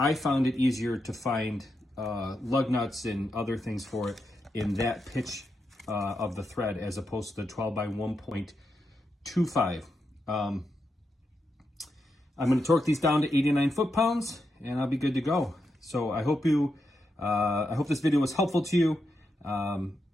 found it easier to find lug nuts and other things for it in that pitch of the thread as opposed to the 12 by 1.25. I'm going to torque these down to 89 foot-pounds, and I'll be good to go. So I hope this video was helpful to you.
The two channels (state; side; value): normal; both; correlation 0.85